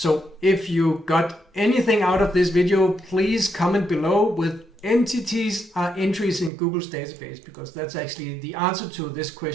if you got anything out of this video, please comment below with entities are entries in Google's database, because that's actually the answer to this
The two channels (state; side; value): drops out; left; at 6.5 s